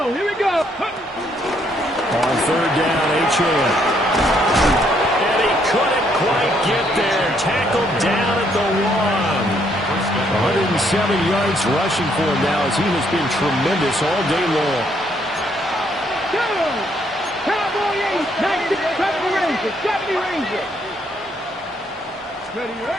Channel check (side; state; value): both; normal; correlation 0.70